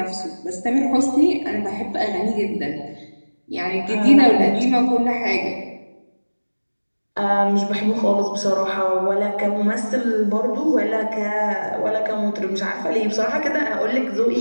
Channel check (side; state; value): both; inverted; correlation -1.00